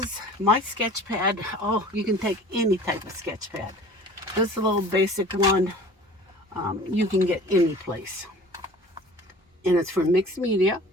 my sketch pad. Oh, you can take any type of sketch pad. This little basic one, you can get any place. And it's for mixed media.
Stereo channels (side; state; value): both; normal; correlation 0.44